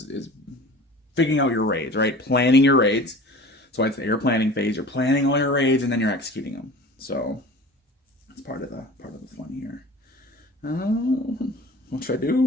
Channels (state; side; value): normal; both; correlation 0.40